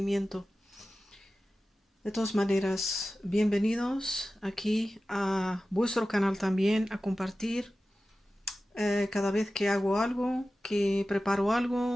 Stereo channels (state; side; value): normal; both; correlation 0.95